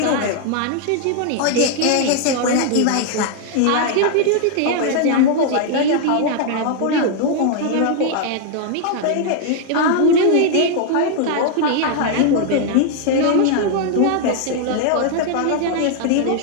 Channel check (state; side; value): different; both; correlation 0.00